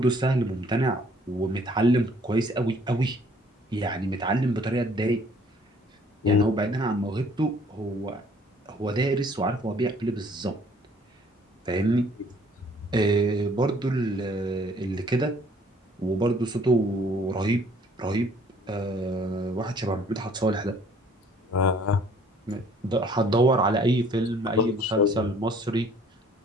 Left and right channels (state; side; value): normal; both; correlation 0.58